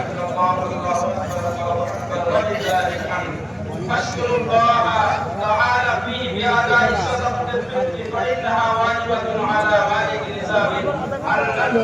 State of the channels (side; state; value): both; identical; correlation 1.00